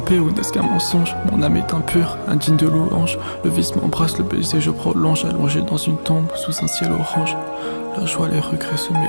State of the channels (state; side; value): inverted; both; correlation -1.00